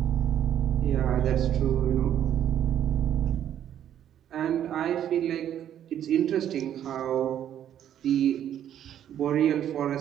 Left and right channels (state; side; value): quieter; left; 10.4 dB